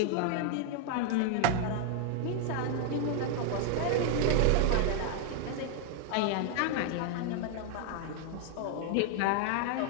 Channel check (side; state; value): both; different; correlation 0.00